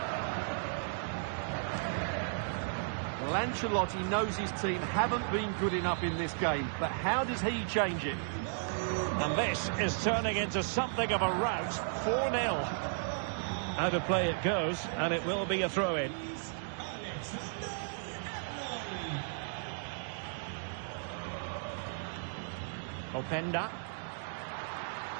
Well, Ancelotti knows his team haven't been good enough in this game, but how does he change it? And this is turning into something of a rout. 4-0. Out of play it goes, and it will be a throw-in. Openda.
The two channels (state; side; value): silent; left; 55 dB below the other